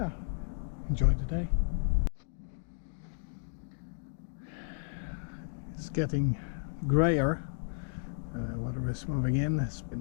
enjoy the day. getting grayer. Weather is moving in. It's been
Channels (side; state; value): right; silent; digital silence